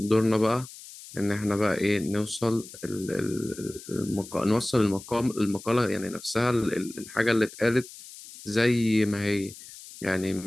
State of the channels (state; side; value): noise; left; hiss, 16 dB below the sound